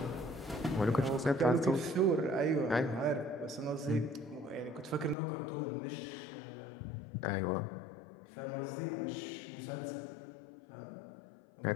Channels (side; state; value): right; drops out; at 5.2 s